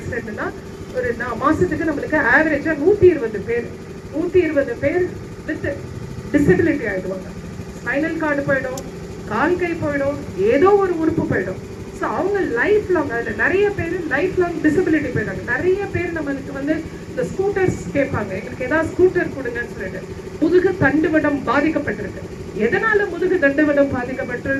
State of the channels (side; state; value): both; identical; correlation 1.00